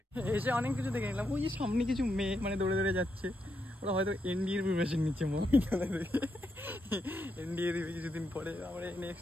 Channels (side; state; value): both; normal; correlation 0.81